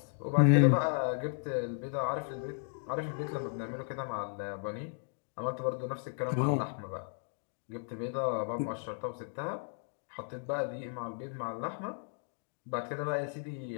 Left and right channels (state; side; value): silent; right; 55 dB below the other